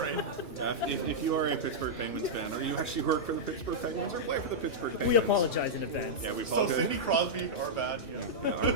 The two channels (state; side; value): late; right; 2.6 ms